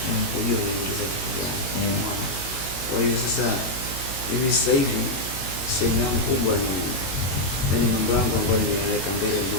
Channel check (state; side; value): late; right; 22 ms